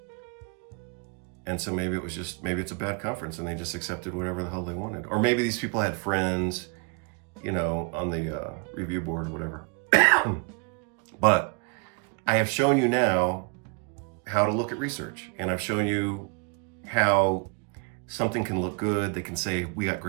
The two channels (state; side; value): quieter; left; 34.1 dB